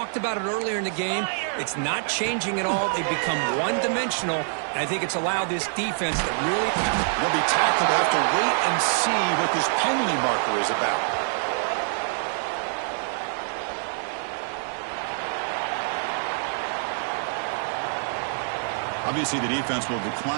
about it earlier in the game. It's not changing at all. They've become one-dimensional, and I think it's allowed this defense to really... They'll be tackled. They'll have to wait and see what this penalty marker is about. Obviously, the defense will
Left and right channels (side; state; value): left; silent; digital silence